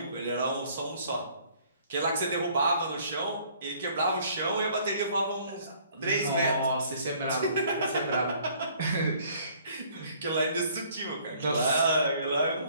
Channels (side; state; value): both; inverted; correlation -0.59